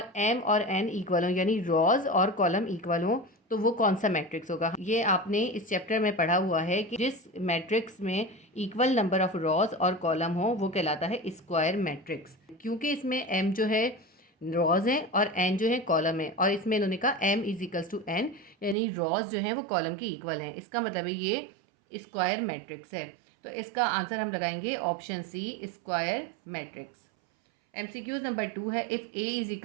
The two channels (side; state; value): left; drops out; at 18.8 s